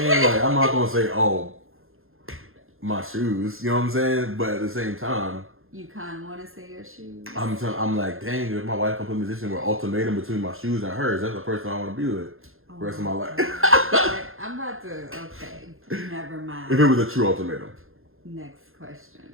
Like, I'm not gonna say, oh, my shoes. You know what I'm saying? But at the same time, you kind of want to say your shoes. I'm like, dang, if my wife comes put in a position where ultimatum between my shoes and hers, that's the person I want to be with the rest of my life. I'm about to. Okay, never mind. If it was a true ultimatum. Next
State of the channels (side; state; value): left; late; 0.60 ms